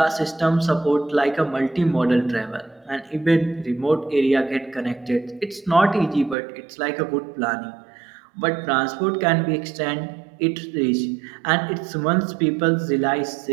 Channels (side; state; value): left; drops out; at 6.4 s